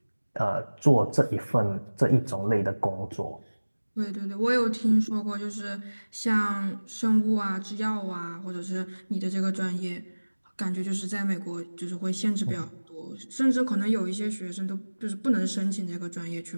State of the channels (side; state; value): both; inverted; correlation -1.00